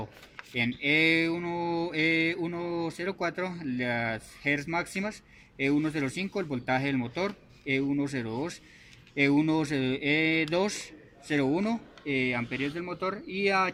en E104 las Hertz máximas, E105 el voltaje del motor, E102, E201 amperios del motor, y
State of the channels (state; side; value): identical; both; correlation 1.00